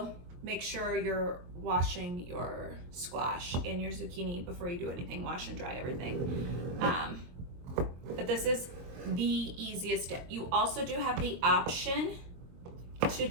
make sure you're washing your squash and your zucchini before you do anything. Wash and dry everything. But this is the easiest dip. You also do have the option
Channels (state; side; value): late; left; 23 ms